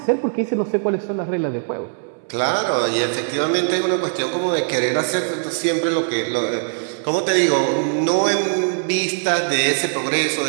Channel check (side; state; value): left; silent; 63 dB below the other